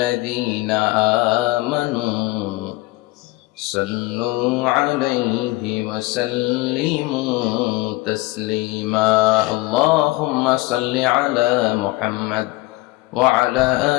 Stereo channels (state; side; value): quieter; right; 20.6 dB